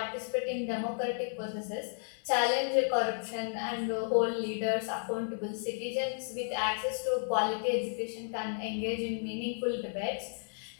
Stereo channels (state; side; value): silent; right; digital silence